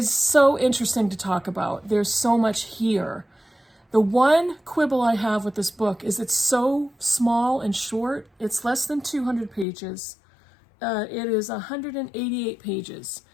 so interesting to talk about. There's so much here. The one quibble I have with this book is it's so small and short. It's less than 200 pages. It is 188 pages.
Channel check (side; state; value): right; drops out; at 9.7 s